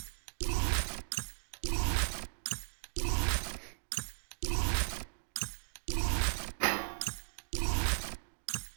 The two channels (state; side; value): silent; left; digital silence